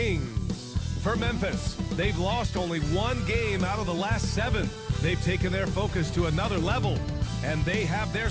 For Memphis, they've lost only one game out of the last 7. They've taken their focus to another level, and they have their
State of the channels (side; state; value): both; identical; correlation 1.00